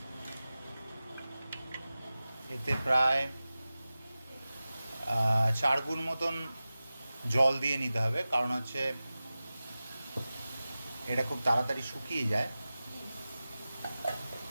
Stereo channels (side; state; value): both; inverted; correlation -0.96